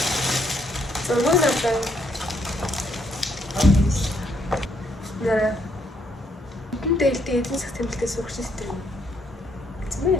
Зөвлөлтэй. Нэр. Энэ дээлтэй эзэн засаг тэмдэлтэй сурагч систем.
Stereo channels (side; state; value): both; normal; correlation 0.72